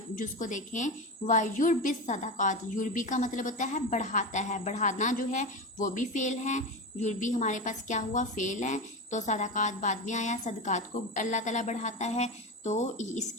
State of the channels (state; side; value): normal; both; correlation 0.21